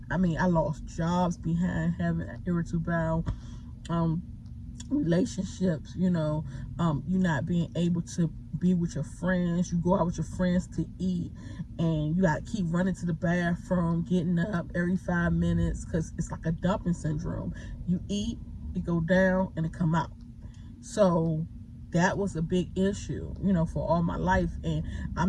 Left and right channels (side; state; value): both; identical; correlation 1.00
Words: I mean, I lost jobs behind having irritable bowel, relationships, you not being able to be with your friends. You go out with your friends to eat, and you got to keep running to the bathroom, getting up every 5 minutes, because it's like a dumping syndrome. You eat, it go down, and it come out. So that was a big issue, for all my life, and